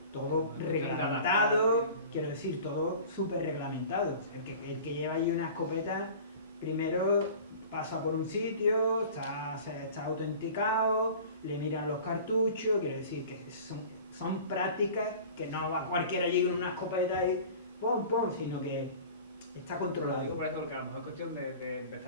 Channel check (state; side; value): inverted; both; correlation -0.41